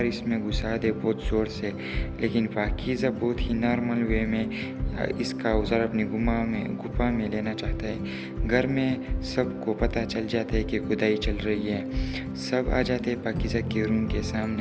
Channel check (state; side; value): identical; both; correlation 1.00